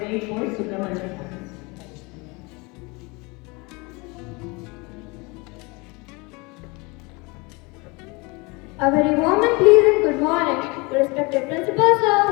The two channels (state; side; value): quieter; right; 26.8 dB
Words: poet Subramaniam Bharati. A very warm and pleasant good morning to respected Principal Sir,